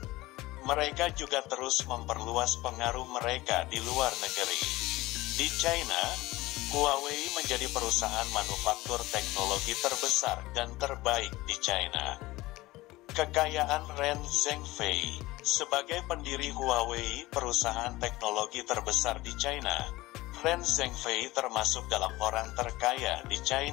Mereka juga terus memperluas pengaruh mereka di luar negeri. Di China, Huawei menjadi perusahaan manufaktur teknologi terbesar dan terbaik di China. Kekayaan Ren Zhengfei sebagai pendiri Huawei, perusahaan teknologi terbesar di China. Ren Zhengfei termasuk dalam orang terkaya di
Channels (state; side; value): quieter; right; 19.1 dB